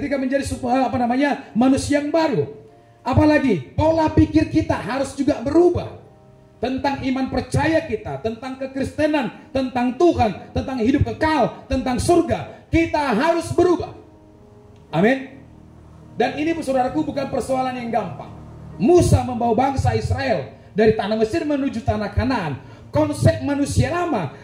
menjadi manusia yang baru. Apalagi pola pikir kita harus juga berubah tentang iman percaya kita, tentang kekristenan, tentang Tuhan, tentang hidup kekal, tentang surga. Kita harus berubah. Amin. Dan ini, saudaraku, bukan persoalan yang gampang. Musa membawa bangsa Israel dari tanah Mesir menuju tanah Kanaan. Konsep manusia lama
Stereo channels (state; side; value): identical; both; correlation 1.00